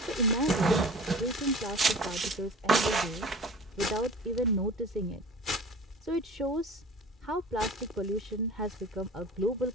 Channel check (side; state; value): both; normal; correlation 0.41